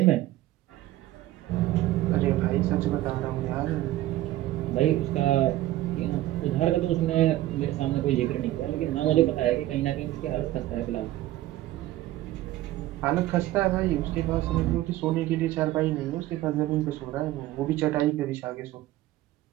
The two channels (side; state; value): left; quieter; 15.2 dB